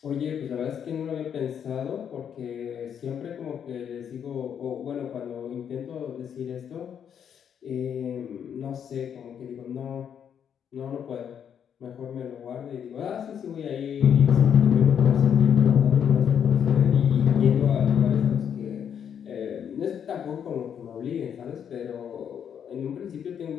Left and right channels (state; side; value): quieter; right; 8.3 dB